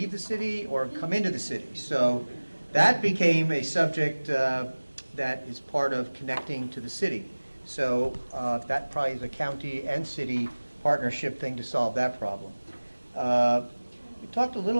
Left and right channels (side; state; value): both; inverted; correlation -1.00